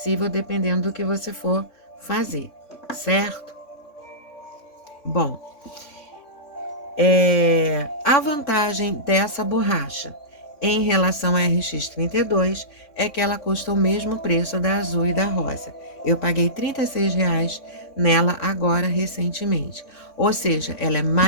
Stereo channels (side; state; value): right; late; 3.5 ms